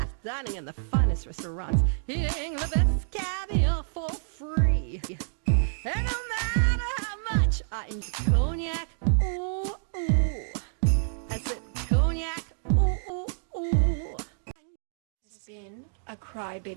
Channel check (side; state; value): left; silent; digital silence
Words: dining in the finest restaurants, eating the best caviar for free. And no matter how much I enjoy cognac, ooh, ooh. I said cognac, ooh, ooh, ooh. It's been a